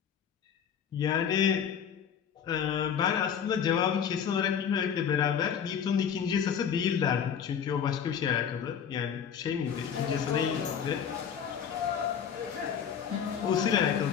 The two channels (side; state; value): right; quieter; 7.9 dB